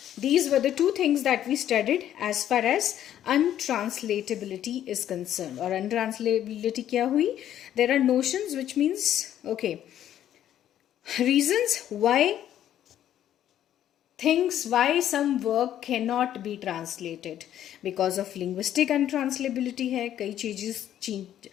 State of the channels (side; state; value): right; quieter; 11.2 dB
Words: these were the two things that we studied as far as untranslatability is concerned. Or untranslatability kya hui? There are notions, which means, okay, reasons why some work cannot be translated. Because of linguistic untranslatability hai,